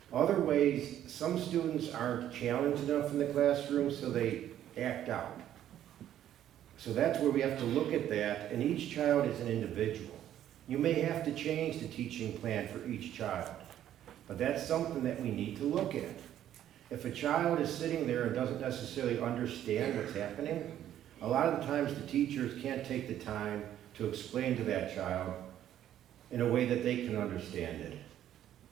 Other ways, some students aren't challenged enough in the classroom, so they act out. So that's where we have to look at that, and each child is an individual. You may have to change the teaching plan for each child, but that's something that we need to look at. If a child is sitting there and doesn't necessarily understand what's happening, a lot of the times the teachers can't take the time to explain to that child in a way that they can understand it.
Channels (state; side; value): quieter; left; 11.4 dB